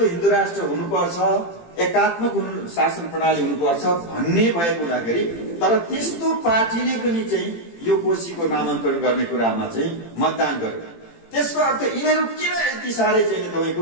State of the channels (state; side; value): late; right; 18 ms